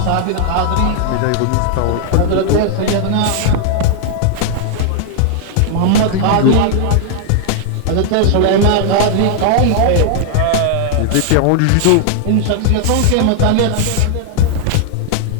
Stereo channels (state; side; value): different; both; correlation 0.00